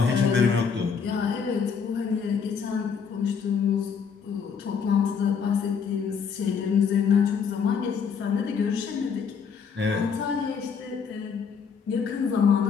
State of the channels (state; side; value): quieter; right; 6.3 dB